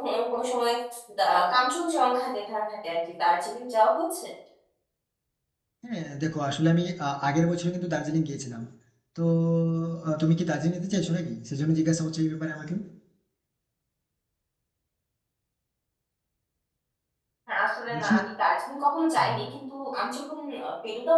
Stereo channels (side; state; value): both; identical; correlation 1.00